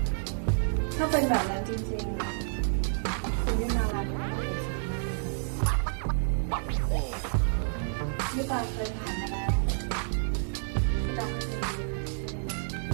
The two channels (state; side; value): silent; left; digital silence